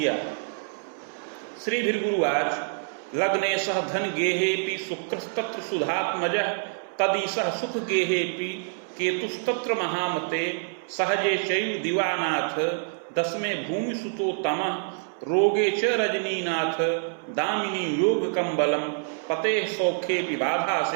श्री भृगुवाच लग्ने सह धन गेहेपि शुक्रस्तत्र सुधात्मजः तदीसह सुख गेहेपि केतुस्तत्र महामते सहजे चैव दिवानाथ दसमे भूमि सुतो तमः रोगे च रजनीनाथ दामिनी योग कंबलम पते सौखे बाधा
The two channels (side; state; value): left; silent; 61 dB below the other